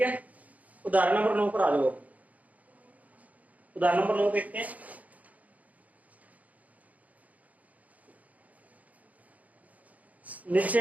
है, उदाहरण नंबर 9 पर आ जाओ। उदाहरण नंबर 9 देखते हैं।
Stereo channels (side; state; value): left; late; 0.074 ms